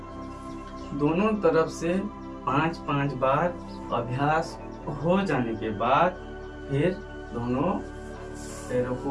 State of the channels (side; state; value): both; identical; correlation 1.00